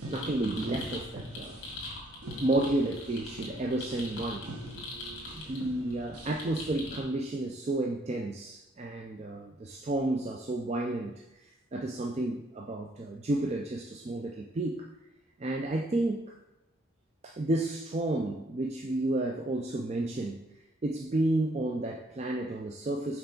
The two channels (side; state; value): both; normal; correlation 0.67